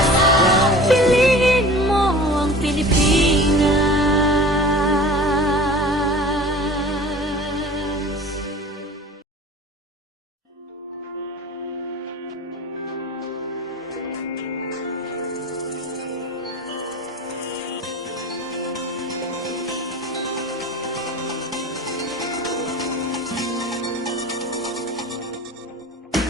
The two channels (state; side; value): normal; both; correlation 0.40